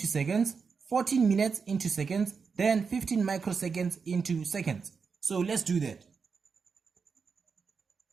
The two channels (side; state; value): left; quieter; 5.5 dB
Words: seconds, 14 minutes into seconds, then 15 microseconds into seconds. So let's do that.